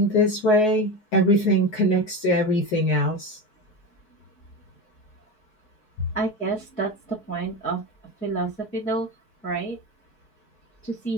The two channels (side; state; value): right; late; 4.7 ms